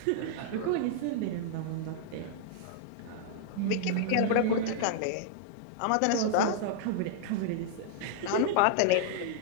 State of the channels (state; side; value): different; both; correlation -0.01